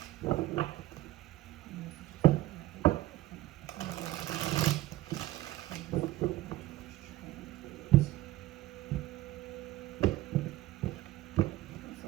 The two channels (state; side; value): quieter; left; 16.5 dB